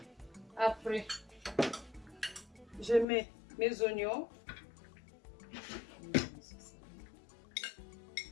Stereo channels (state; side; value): drops out; right; at 3.1 s